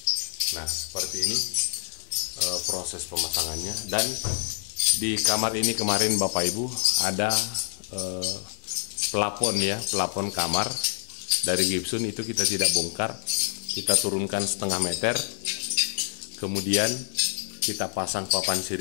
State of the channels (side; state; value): right; silent; digital silence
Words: Nah, seperti ini proses pemasangannya. Dan di kamar ini kemarin Bapak Ibu ada plafon ya, plafon kamar dari Gibson itu kita tidak bongkar, kita turunkan setengah meter, kemudian kita pasang papan